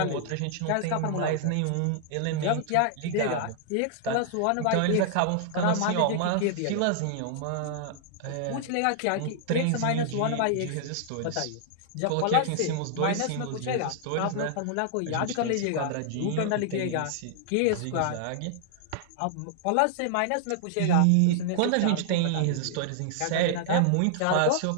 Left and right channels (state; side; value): different; both; correlation -0.01